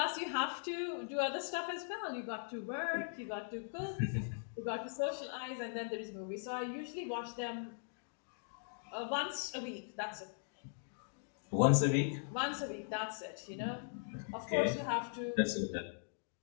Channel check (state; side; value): silent; right; digital silence